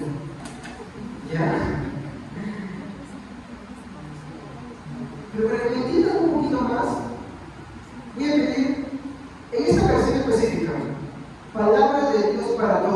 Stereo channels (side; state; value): both; identical; correlation 1.00